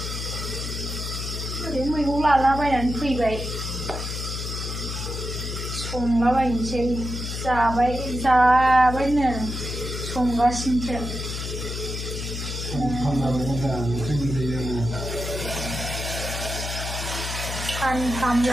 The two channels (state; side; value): noise; left; hum, 5 dB below the sound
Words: ओरैनो मैगं लालाबायनानै फैबाय संलाबायनोसै जाबायनो संगासिनोसो सानथाम